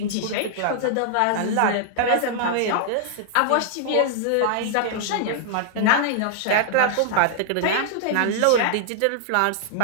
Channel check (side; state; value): both; different; correlation -0.01